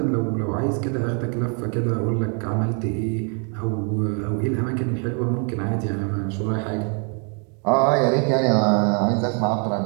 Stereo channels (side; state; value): left; quieter; 39.2 dB